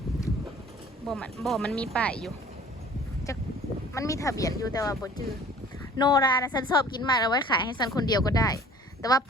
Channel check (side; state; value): both; normal; correlation 0.49